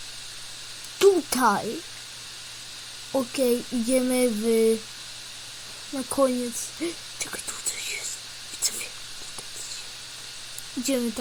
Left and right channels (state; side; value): identical; both; correlation 1.00